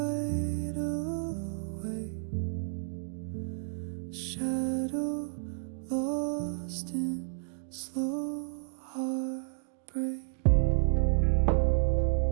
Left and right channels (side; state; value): left; silent; digital silence